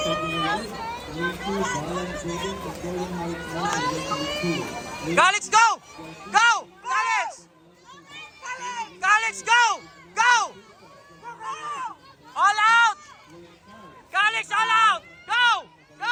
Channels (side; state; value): both; identical; correlation 1.00